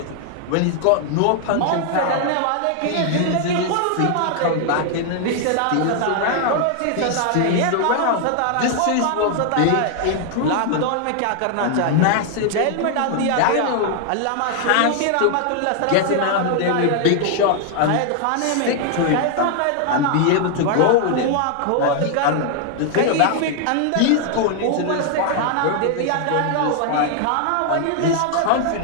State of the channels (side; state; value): both; different; correlation 0.00